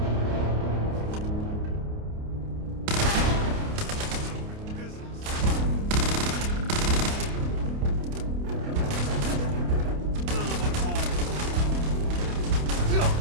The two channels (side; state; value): left; late; 29 ms